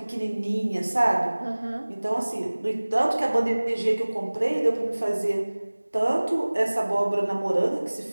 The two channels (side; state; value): both; inverted; correlation -1.00